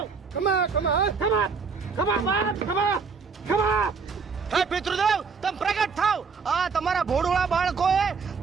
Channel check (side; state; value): left; quieter; 5.2 dB